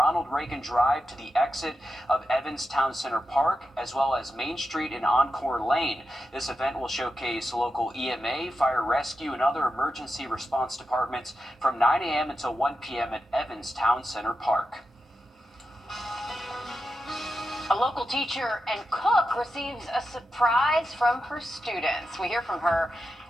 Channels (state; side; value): normal; both; correlation 0.89